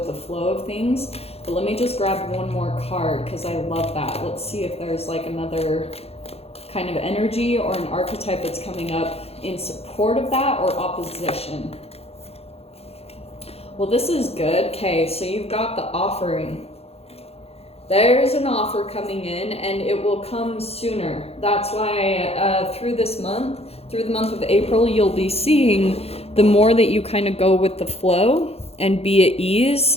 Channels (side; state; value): right; late; 0.29 ms